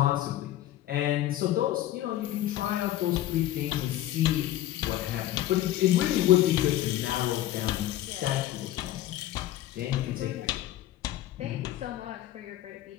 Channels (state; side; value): quieter; right; 13.8 dB